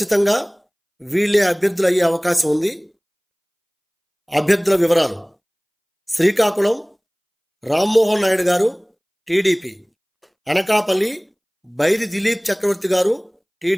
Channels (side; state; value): both; identical; correlation 1.00